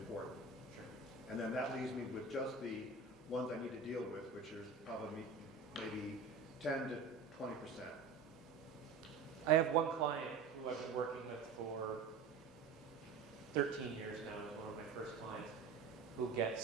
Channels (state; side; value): quieter; left; 4.8 dB